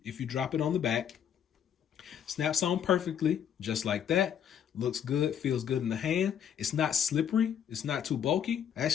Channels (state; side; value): quieter; right; 8.9 dB